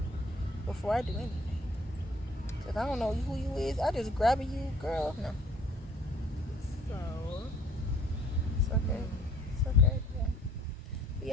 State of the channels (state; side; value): normal; both; correlation 0.58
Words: before I do anything. If I don't know who you is, I just grab you, girl. No. So It's okay. It's okay. Yeah. But